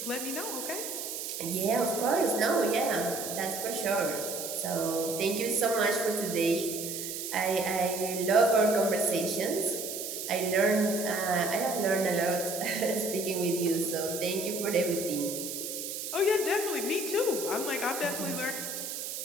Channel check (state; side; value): noise; right; hiss, 6 dB below the sound